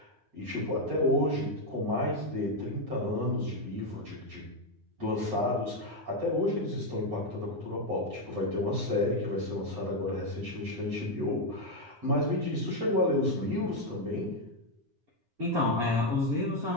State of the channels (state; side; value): late; left; 9.6 ms